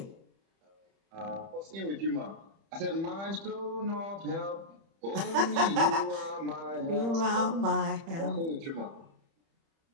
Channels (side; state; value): left; late; 30 ms